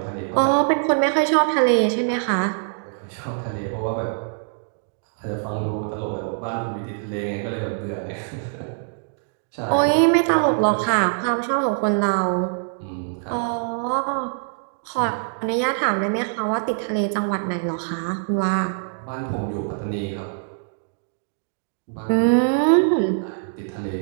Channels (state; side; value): silent; left; digital silence